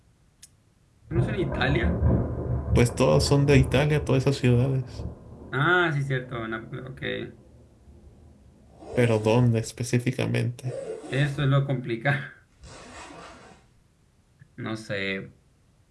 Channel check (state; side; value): identical; both; correlation 1.00